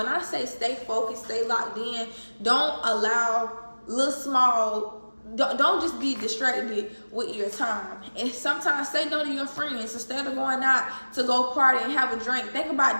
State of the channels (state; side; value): inverted; both; correlation -1.00